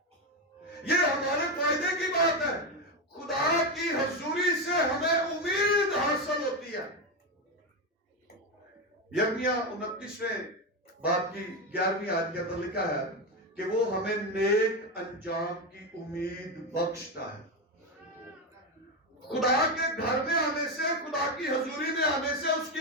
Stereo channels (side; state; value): both; normal; correlation 0.12